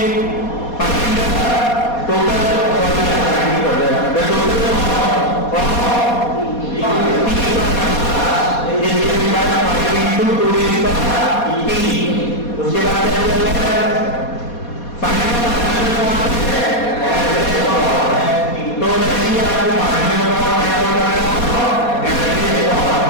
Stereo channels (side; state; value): right; late; 4.2 ms